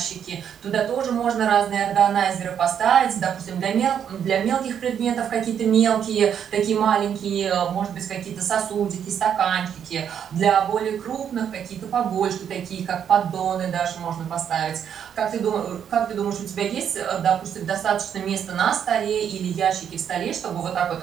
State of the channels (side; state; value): left; quieter; 8.5 dB